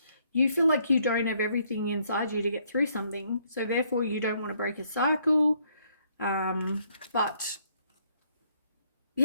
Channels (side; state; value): both; inverted; correlation -0.70